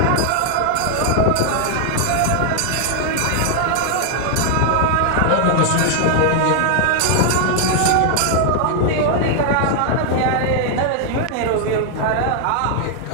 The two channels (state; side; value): different; both; correlation 0.00